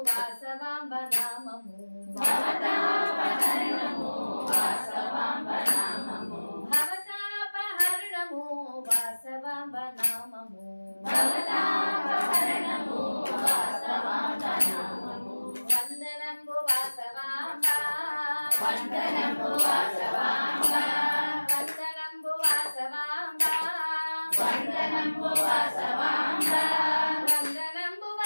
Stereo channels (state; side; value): inverted; both; correlation -1.00